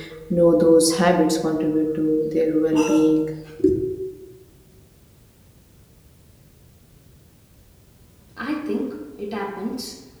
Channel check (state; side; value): identical; both; correlation 1.00